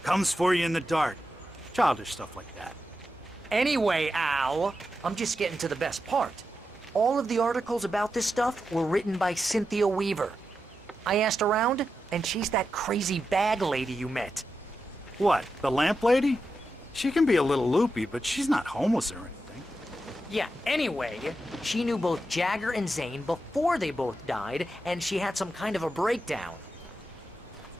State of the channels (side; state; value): both; normal; correlation 0.88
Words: Comes for you in the dark. Childish stuff like that. Anyway, Al, I'm just getting to the best part. All of the articles about this stuff were written by Cynthia Weaver. I asked around, and she's that crazy bag lady you met. What, the lamp lady? She can be a little loopy, but she's not homeless or anything. Yeah, anyway, she knew both Jagger and Zane before they both died, and she had some kind of a breakdown.